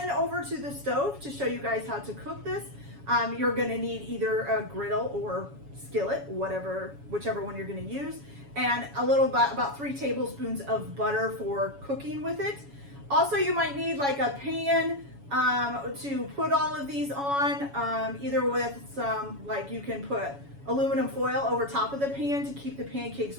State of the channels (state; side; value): late; left; 7.1 ms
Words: over to the stove to show you guys how to cook this. You're gonna need either a griddle or skillet, whichever one you're gonna use, and a little about 3 tablespoons of butter for cooking with it. Also, you might need like a pan to put all of these on, either with some, like you can put aluminum foil over top of the pan to keep the pancakes